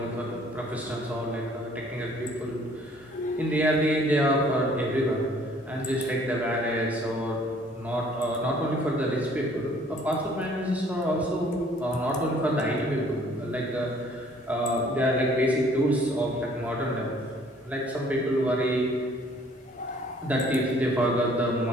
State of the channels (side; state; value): both; normal; correlation 0.58